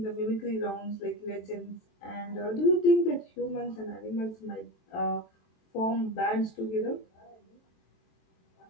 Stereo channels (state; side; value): late; right; 23 ms